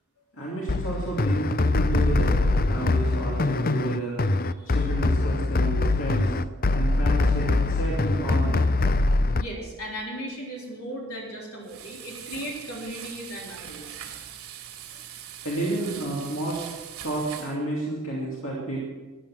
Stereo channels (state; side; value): normal; both; correlation 0.75